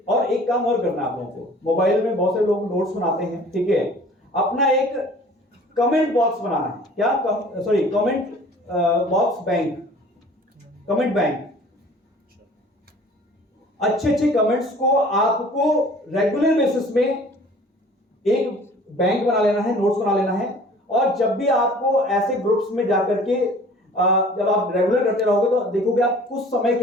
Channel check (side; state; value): both; normal; correlation 0.49